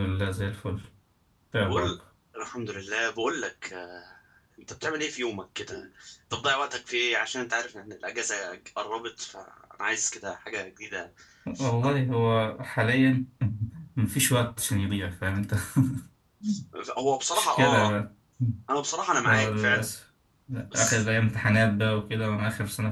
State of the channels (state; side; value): identical; both; correlation 1.00